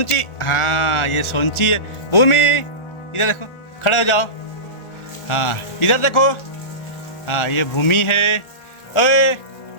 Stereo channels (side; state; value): right; late; 1.4 ms